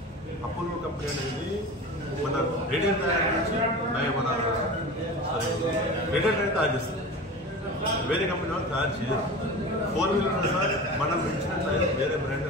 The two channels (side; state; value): both; normal; correlation 0.32